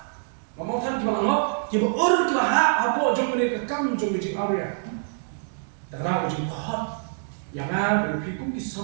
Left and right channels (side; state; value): left; silent; digital silence